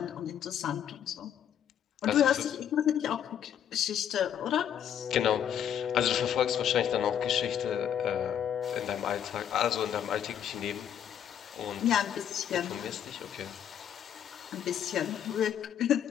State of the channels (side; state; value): right; quieter; 9.4 dB